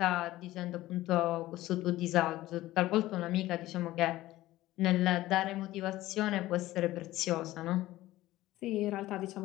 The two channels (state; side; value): quieter; right; 16.4 dB